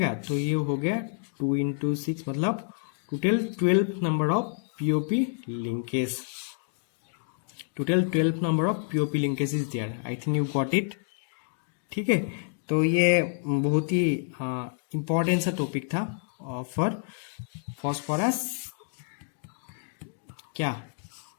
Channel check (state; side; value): silent; right; digital silence